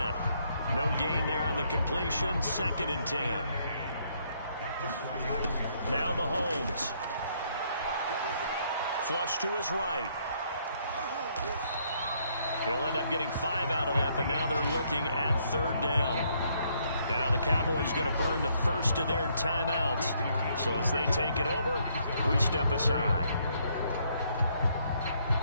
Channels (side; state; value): both; inverted; correlation -0.70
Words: No gain there on the completion. 2nd and 10. Now Mahomes. Flush to his right. He'll end up getting 5 out of that, but now they're looking at 3rd down. Now the Cowboys going to burn the first of their timeouts. So as they take it over, we step aside.